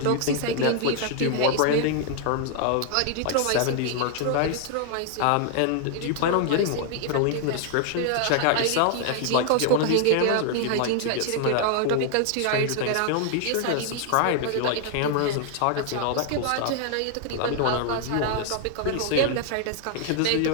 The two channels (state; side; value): different; both; correlation 0.00